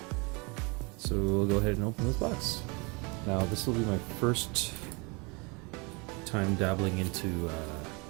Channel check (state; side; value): quieter; left; 29.6 dB